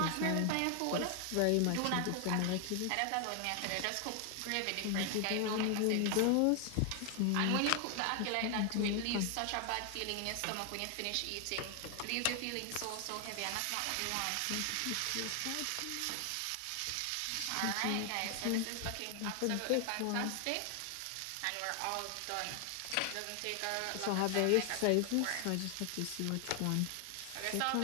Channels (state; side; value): different; both; correlation 0.00